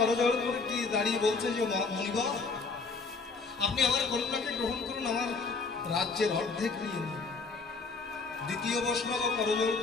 করে কি দাঁড়িয়ে বলছে যে মণিবর, আপনি আমার কন্যাকে গ্রহণ করুন, আমার রাজ্যের অর্ধেক নিয়ে নিন। দ্বিতীয় বৈষ্ণব করজোড়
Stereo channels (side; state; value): right; quieter; 4.3 dB